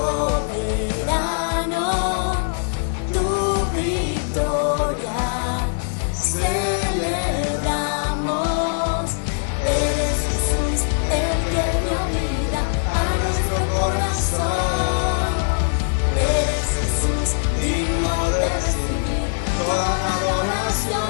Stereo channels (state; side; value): silent; right; 59 dB below the other